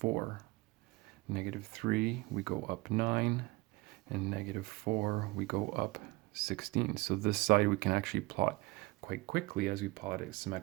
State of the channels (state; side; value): quieter; left; 23.0 dB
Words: -3, we go up 9. And -4, we go up 16. So this side we can actually plot quite quickly as we plot it